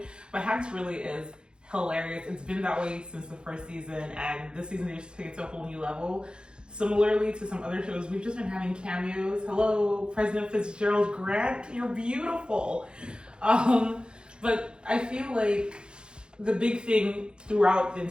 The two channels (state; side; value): late; left; 0.050 ms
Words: But Hacks really is hilarious. It's been that way since the first season, and this season they just take it to a whole new level. Similarly to some other shows, we've just been having cameos. Hello, President Fitzgerald Grant, you're beautiful. But I feel like the big thing throughout the